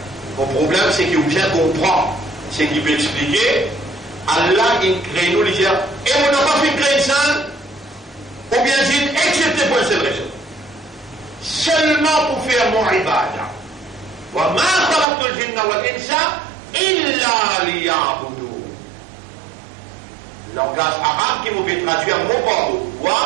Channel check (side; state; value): left; drops out; at 15.1 s